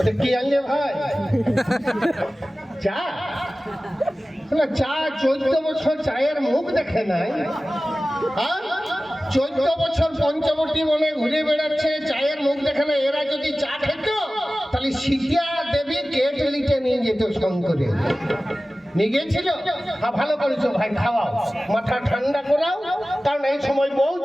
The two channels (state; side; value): normal; both; correlation 0.96